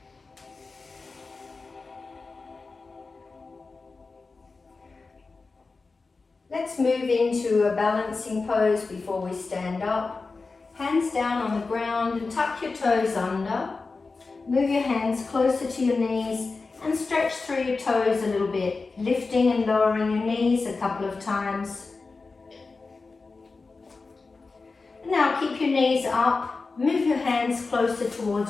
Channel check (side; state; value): right; quieter; 4.0 dB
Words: Let's move into a balancing pose before we stand up. Hands down on the ground and tuck your toes under. Move your hands closer to your knees and stretch through your toes a little bit, lifting and lowering your knees a couple of times. Now keep your knees up, move your hands closer